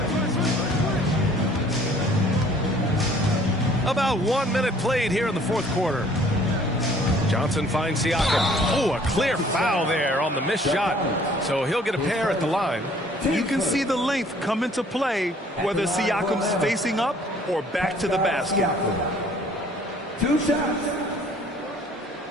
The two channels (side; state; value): both; normal; correlation 0.56